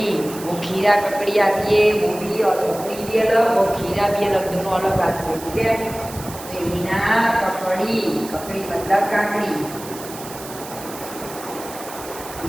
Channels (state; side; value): noise; right; hiss, 14 dB below the sound